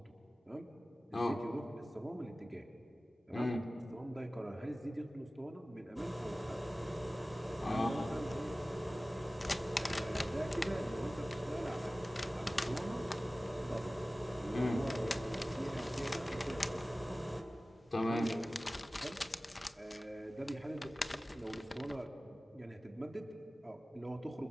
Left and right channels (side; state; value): both; normal; correlation 0.97